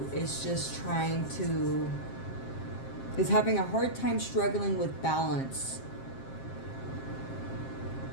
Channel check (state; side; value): late; right; 7.5 ms